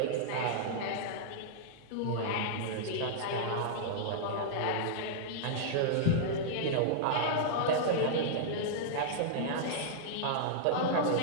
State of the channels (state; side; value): different; both; correlation -0.02